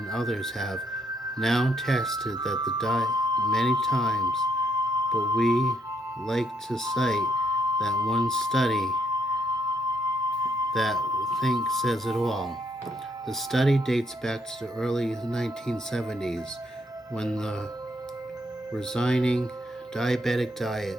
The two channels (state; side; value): normal; both; correlation 0.73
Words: others have now tested that the diet many times, but we like to cite that one study that I think says it all. The study dates back to the early 1970s when the resigning diabetic diet